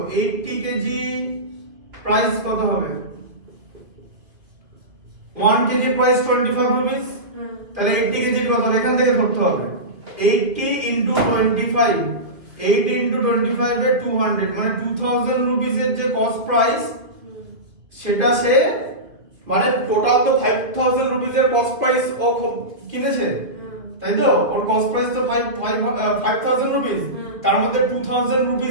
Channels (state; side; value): late; left; 2.7 ms